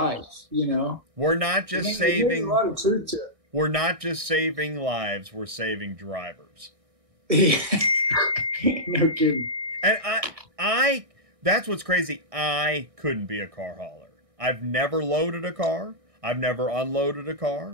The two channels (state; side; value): late; left; 1.6 ms